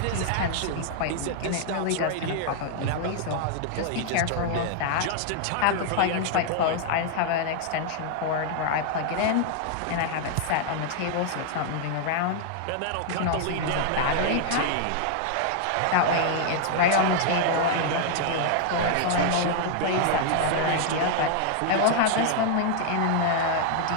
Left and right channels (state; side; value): different; both; correlation 0.00